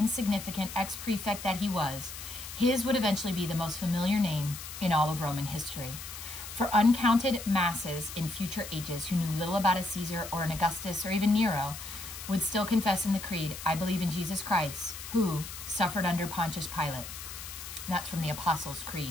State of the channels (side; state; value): left; noise; hiss, 10 dB below the sound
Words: ex-prefect that he was, his would eventually be the most familiar name in all of Roman history. For uncounted masses in future ages who knew little about a Caesar or an Augustus or even Nero would still confess in the creed, I believe in Jesus Christ, who suffered under Pontius Pilate. That's from the Apostles'